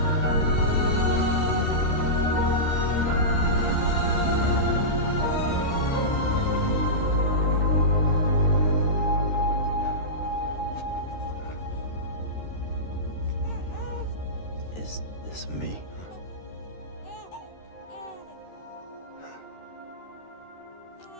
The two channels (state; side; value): late; right; 13 ms